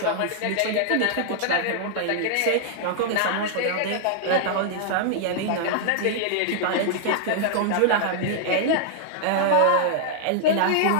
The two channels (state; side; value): different; both; correlation -0.01